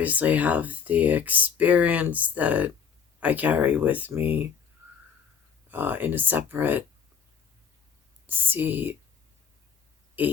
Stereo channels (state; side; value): quieter; right; 6.9 dB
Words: have the experience that I carry with me in a separate CHSSFH